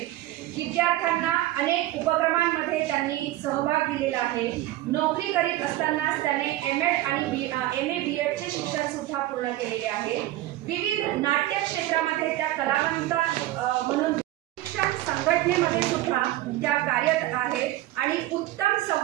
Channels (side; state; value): left; quieter; 15.8 dB